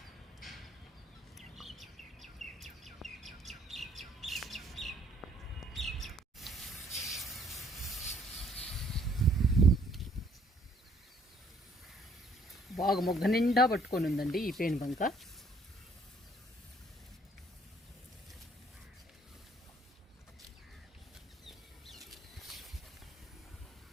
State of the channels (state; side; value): normal; both; correlation 0.63